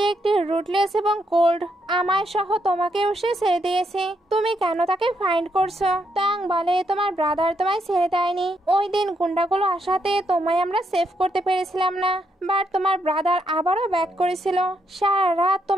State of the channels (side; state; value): both; normal; correlation 0.77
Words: একটি রুটলেস এবং কোল্ড, আমায় সহ তোমাকেও সে ছেড়ে দিয়েছে, তুমি কেন তাকে ফাইন্ড করছো? তং বলে তোমার ব্রাদার তোমায় ছেড়ে দেয়নি, ওই দিন গুন্ডাগুলো আসাতে তোমায় আমরা সেভ করতে পেরেছিলাম না, বাট তোমার ব্রাদার আবারও ব্যাক করেছিল, সারা রাত